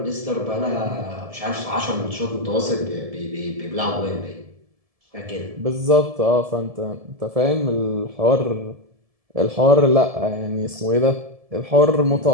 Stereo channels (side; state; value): left; late; 1.7 ms